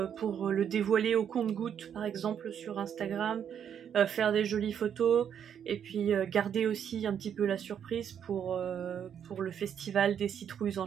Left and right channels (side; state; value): left; quieter; 8.6 dB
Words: dévoiler au compte-gouttes par exemple sur Instagram, faire des jolies photos et puis garder aussi un petit peu la surprise pour le festival des citrouilles